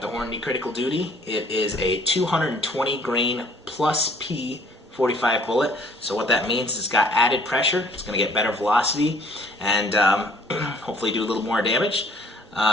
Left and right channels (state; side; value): normal; both; correlation 0.57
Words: Hornady Critical Duty. It is a 220 grain plus P 45 bullet. So what that means is it's got added pressure. It's going to get better velocity and hopefully do a little more damage.